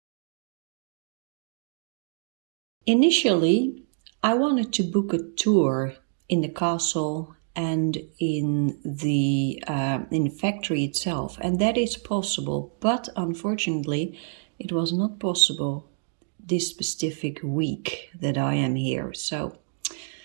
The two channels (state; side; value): silent; left; digital silence